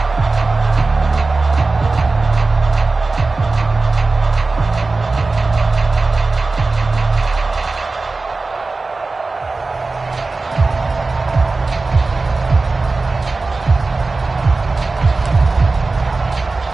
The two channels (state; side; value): quieter; left; 3.6 dB